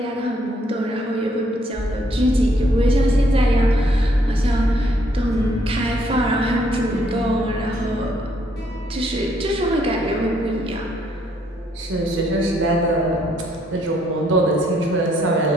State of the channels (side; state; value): both; normal; correlation 0.69